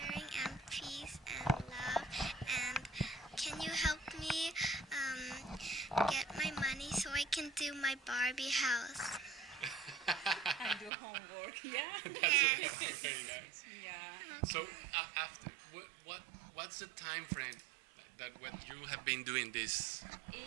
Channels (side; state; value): left; drops out; at 10.9 s